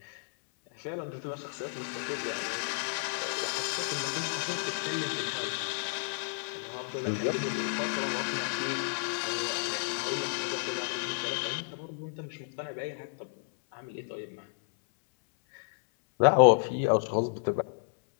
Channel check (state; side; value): silent; right; 57 dB below the other